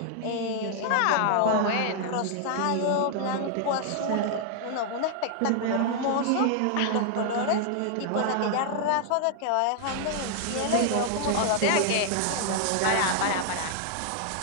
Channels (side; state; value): both; different; correlation 0.00